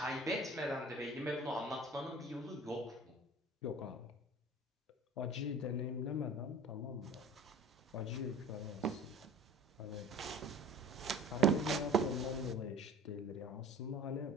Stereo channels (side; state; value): both; normal; correlation 0.42